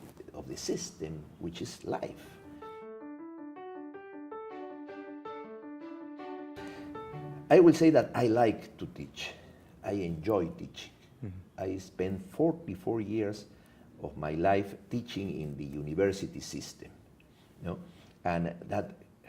system, which is life. I will say that I like to teach. I enjoy teaching. I spent 44 years of my life teaching in the university system, you know? And that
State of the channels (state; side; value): identical; both; correlation 1.00